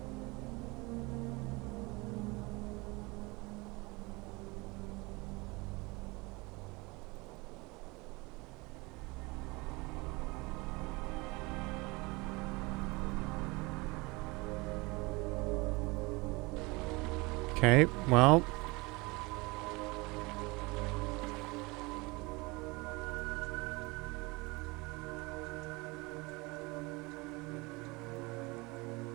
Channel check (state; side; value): quieter; left; 25.0 dB